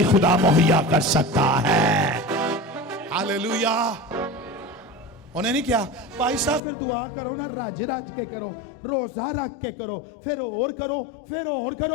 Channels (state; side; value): drops out; right; at 6.6 s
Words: खुदा मुहैया कर सकता है। हालेलुया। उन्हें नहीं किया भाई साहब फिर दुआ करो ना, राज के करो, रोजा रख के करो, फिर और करो, फिर और